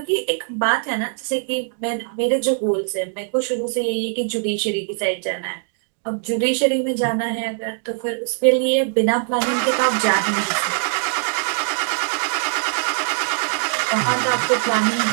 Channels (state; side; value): silent; left; 59 dB below the other